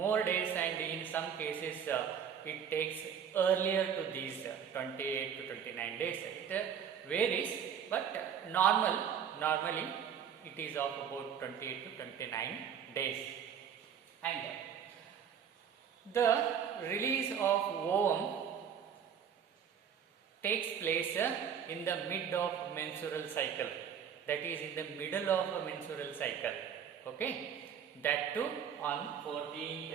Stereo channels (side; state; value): left; quieter; 8.1 dB